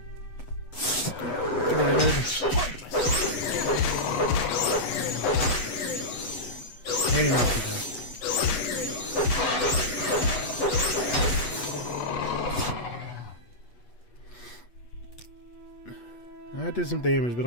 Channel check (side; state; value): right; late; 8.3 ms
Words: Maybe not too bad. That did some damage, but